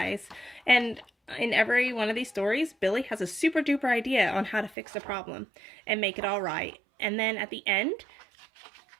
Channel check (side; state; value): left; drops out; at 4.8 s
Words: and in every one of these stories, Billy has a super duper idea on how to fix the problem and make it all right. And then at the end,